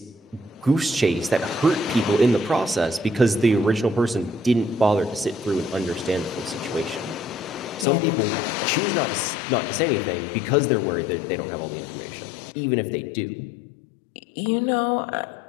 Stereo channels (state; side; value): drops out; right; at 7.9 s